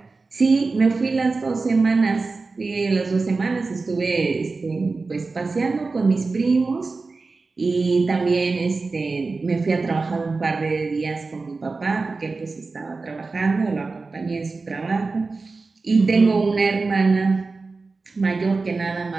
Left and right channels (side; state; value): left; quieter; 3.9 dB